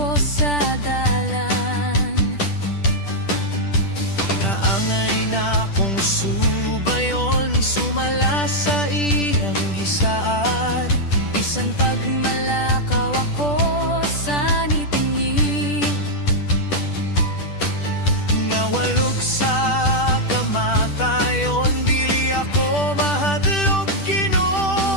sa dalan. Naangay na akong subayon, sumala sa iyang gisaad. Bisan pagmalakaw ako sa nitingi, Nga walog sa kamatayon, dili ako mahadlok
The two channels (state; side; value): late; right; 10 ms